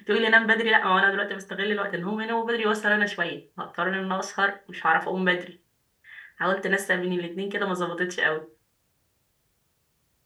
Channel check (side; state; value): both; identical; correlation 1.00